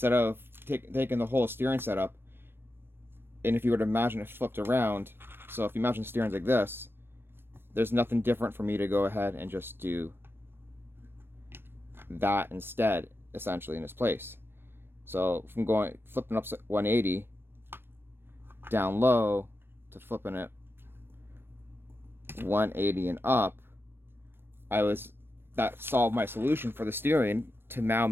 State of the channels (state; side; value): late; left; 0.10 ms